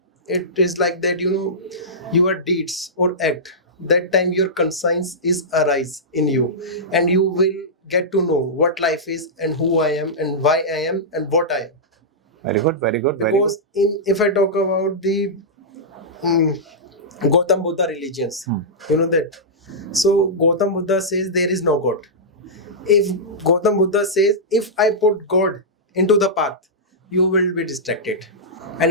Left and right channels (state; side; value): normal; both; correlation -0.14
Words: It is like that, your deeds or act, that time your conscience is arise in you, and you will get to know what life is and who I am and why I am and what I am. Very good, very good, very Because if I talk about the Gautam Buddha religions, that. So Gautam Buddha says there is no God. If Gautam Buddha says, if I put God into the path, you will be distracted. And